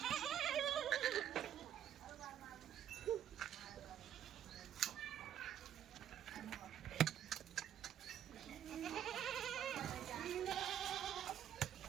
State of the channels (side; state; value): left; quieter; 10.2 dB